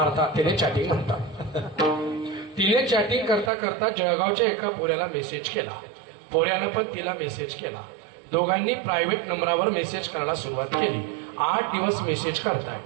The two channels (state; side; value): drops out; left; at 3.5 s